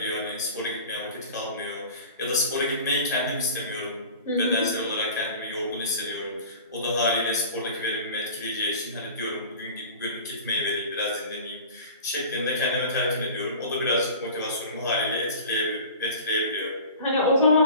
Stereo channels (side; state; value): both; inverted; correlation -0.39